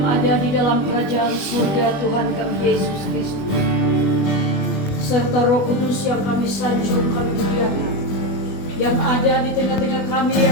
ada di dalam kerajaan surga, Tuhan kami Yesus Kristus, serta Roh Kudus yang kami sanjung, kami muliakan, yang ada di tengah-tengah kami,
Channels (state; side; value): late; right; 21 ms